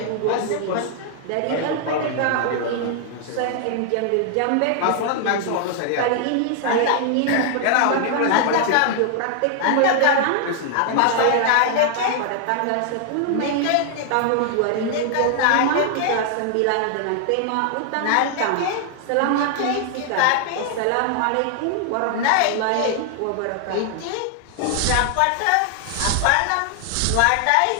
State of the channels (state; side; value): different; both; correlation 0.00